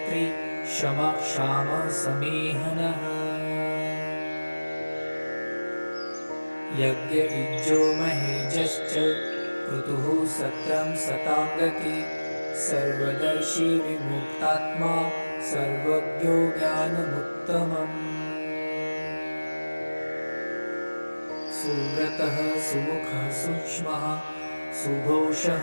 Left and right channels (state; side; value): inverted; both; correlation -1.00